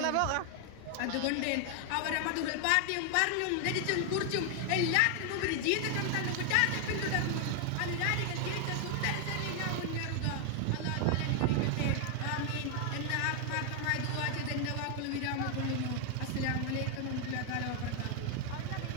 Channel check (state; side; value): different; both; correlation 0.00